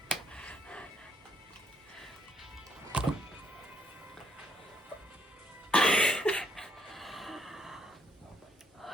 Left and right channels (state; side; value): normal; both; correlation 0.71